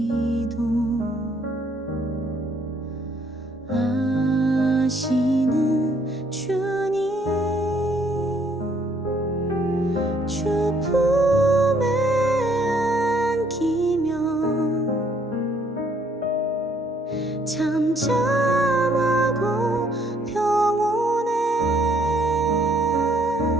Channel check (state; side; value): normal; both; correlation 0.66